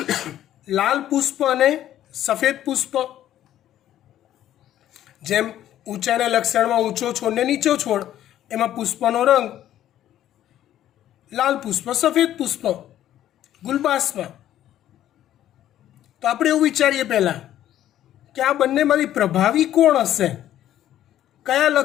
લાલ પુષ્પ અને સફેદ પુષ્પ. જેમ ઊંચાઈના લક્ષણમાં ઊંચો છોડ ને નીચો છોડ, એમાં પુષ્પનો રંગ લાલ પુષ્પ સફેદ પુષ્પ ગુલબાસમાં. તો આપણે એવું વિચારીએ પહેલાં કે આ બંનેમાંથી પ્રભાવી કોણ હશે, કયા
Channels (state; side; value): quieter; right; 12.1 dB